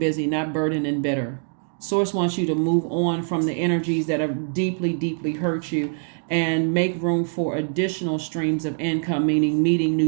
not burdened and bitter. Source wants you to move on from the energies that have deeply, deeply hurt you, and make room for additional streams of income, meaning meeting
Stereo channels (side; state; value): left; silent; digital silence